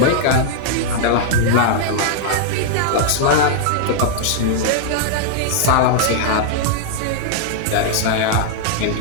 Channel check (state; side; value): different; both; correlation -0.01